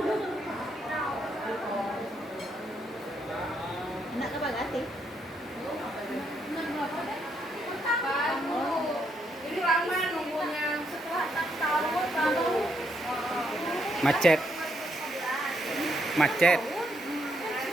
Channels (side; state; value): both; normal; correlation 0.76